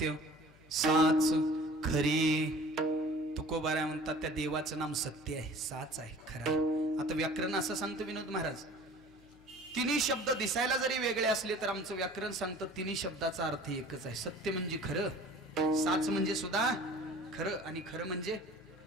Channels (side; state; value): left; noise; hum, 27 dB below the sound